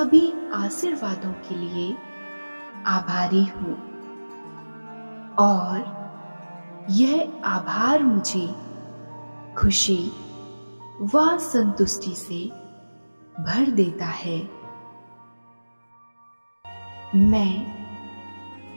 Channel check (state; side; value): inverted; both; correlation -1.00